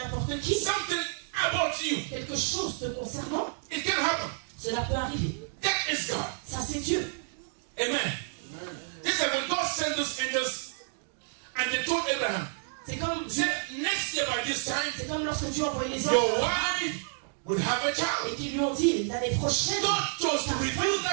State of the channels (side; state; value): left; silent; 58 dB below the other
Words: qui something about you. quelque chose te concernant. It can happen. Cela peut arriver. That is God. Ça, c'est Dieu. Amen. This is when God sent those angels and they told Abraham, C'est comme, he said, next year by this time, c'est comme lorsque Dieu envoyait les your anges wife would have a et child. qu'ils lui ont dit l'année prochaine, God chose to reveal